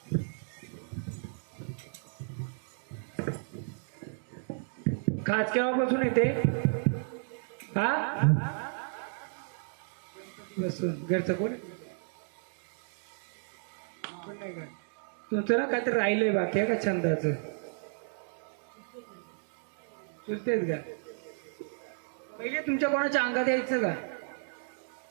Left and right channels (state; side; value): silent; left; digital silence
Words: खास केव्हापासून येते? हा बसून घरचं कोण नाही का तुमचं ना काहीतरी राहिलंय बाकी आहे का छंदाचं? चुलतेच का? पहिले तुमच्या कोणाच्या अंगात यायचं का?